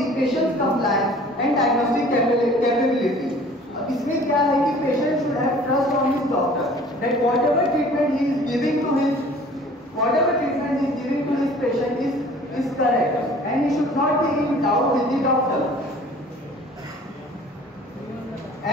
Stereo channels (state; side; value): normal; both; correlation 0.49